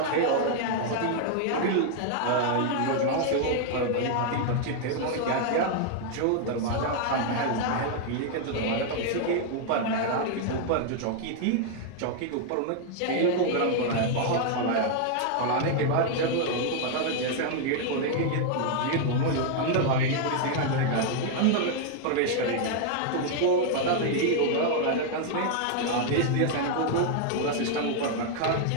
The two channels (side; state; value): both; different; correlation 0.00